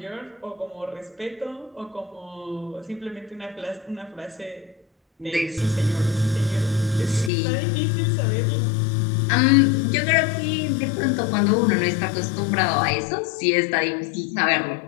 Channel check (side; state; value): right; drops out; at 7.3 s